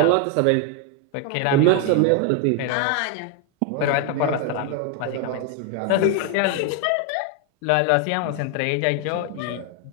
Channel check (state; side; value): different; both; correlation 0.00